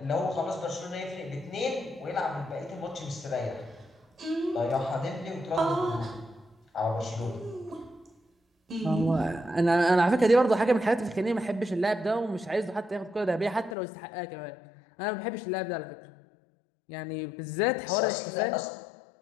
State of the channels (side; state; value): right; drops out; at 13.8 s